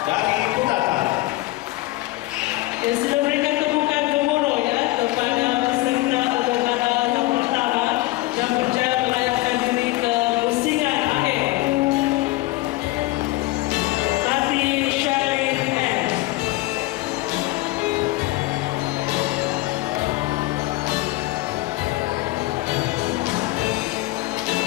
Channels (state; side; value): quieter; right; 19.3 dB